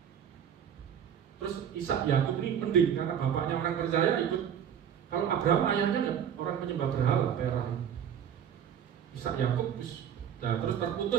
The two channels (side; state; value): left; quieter; 8.8 dB